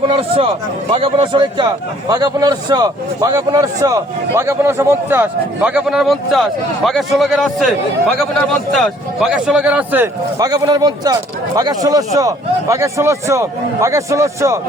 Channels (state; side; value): normal; both; correlation 0.59